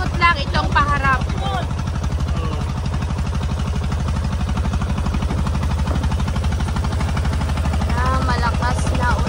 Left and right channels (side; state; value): both; identical; correlation 1.00